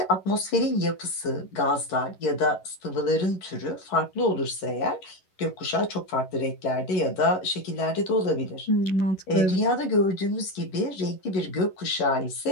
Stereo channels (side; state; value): right; late; 11 ms